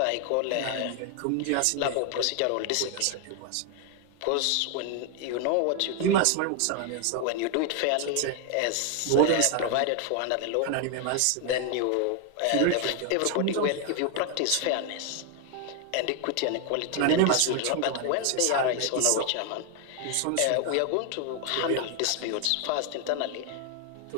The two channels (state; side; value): different; both; correlation 0.00